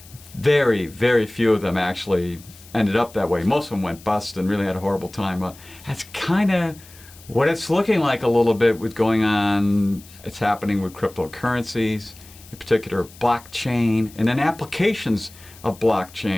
Very, very few of them actually ended up that way. Most of them went bust and really had a horrible time. That's kind of what it's looking like a little bit with going on. It's happening with cryptocurrencies, in particular blockchain, and then applications of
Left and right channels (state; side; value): noise; left; hiss, 22 dB below the sound